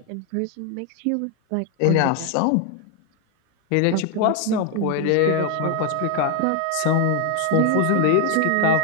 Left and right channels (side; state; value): both; different; correlation 0.01